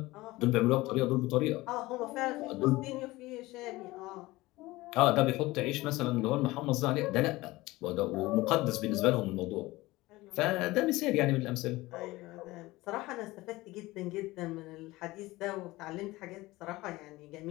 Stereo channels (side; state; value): right; quieter; 19.6 dB